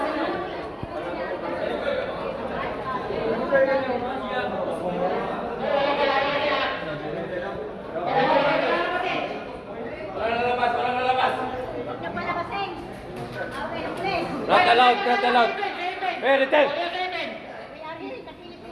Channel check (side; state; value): both; identical; correlation 1.00